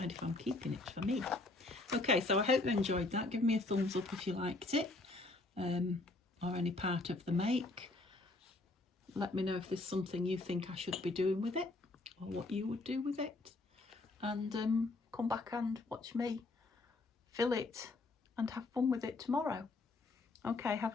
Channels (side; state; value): right; quieter; 3.1 dB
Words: if I'm keeping it for me. Okay, so I hope you enjoyed that. Give me a thumbs up if you liked it, or any part of the make. Let me know if there's something you think I should be doing with it, or what you would do with it. And come back and watch me fill it and have fun with it tomorrow. Okay, have